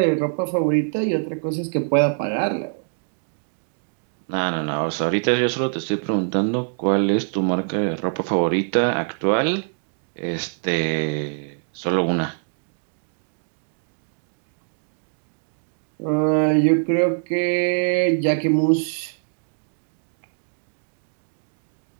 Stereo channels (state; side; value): silent; left; digital silence